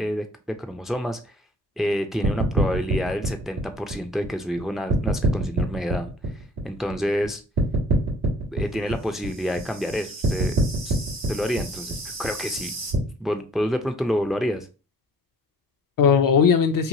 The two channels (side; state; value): both; normal; correlation 0.50